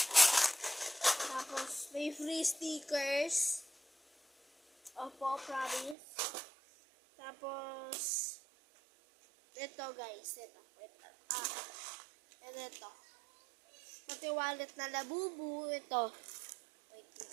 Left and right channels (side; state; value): left; drops out; at 6.0 s